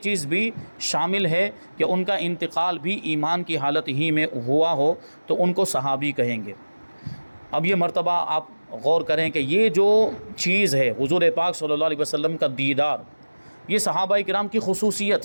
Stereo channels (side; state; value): both; inverted; correlation -1.00